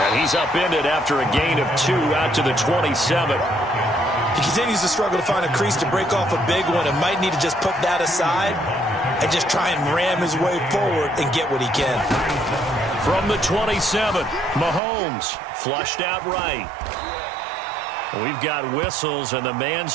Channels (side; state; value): left; drops out; at 14.8 s